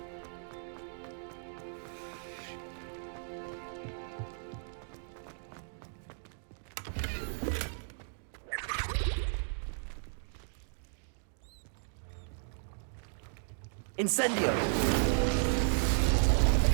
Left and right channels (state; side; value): silent; left; digital silence